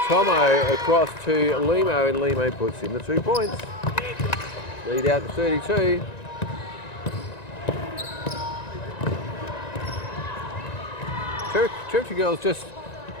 Tomo across to Limo, and Limo puts in the 2 points. Lead out to 32. Territory girls just,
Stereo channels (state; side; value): late; right; 1.9 ms